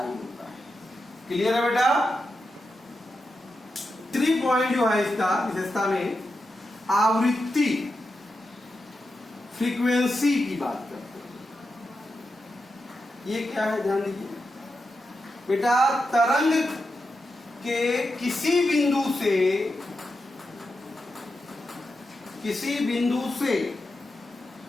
है। क्लियर है बेटा? 3 पॉइंट जो है इसका विशेषता में आवृत्ति, फ्रीक्वेंसी की बात करते हैं। ये क्या है, ध्यान दीजिए बेटा। तरंग के किसी बिंदु से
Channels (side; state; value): both; normal; correlation 0.88